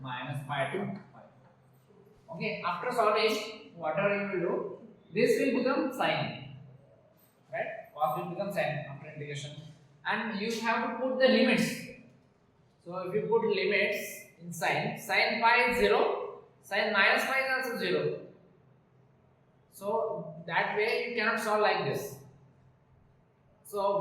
minus pi to pi. Okay, after solving, whatever you will do, this will become sine, right? Cos will become sine after integration, and you have to put the limits. So if you put limits in sine, sine pi is 0, sine minus pi is also 0. So that way you cannot solve like this. So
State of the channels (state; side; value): identical; both; correlation 1.00